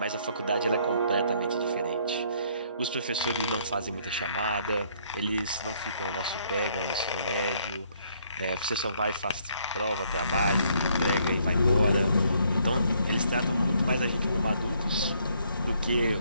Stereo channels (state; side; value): inverted; both; correlation -0.67